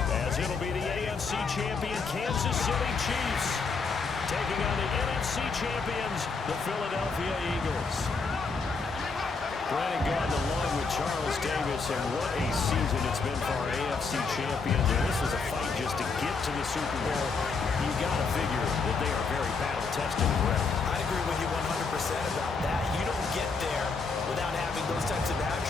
as it'll be the AFC champion Kansas City Chiefs taking on the NFC champions, the Philadelphia Eagles. Brandon Gordon along with Charles Davis, and what a season it's been for our AFC champions. And this is a fight just to get to the Super Bowl. You got to figure that they are very battle-tested and ready. I agree with you 100% about that. You don't get there without having those types of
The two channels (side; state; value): right; quieter; 4.6 dB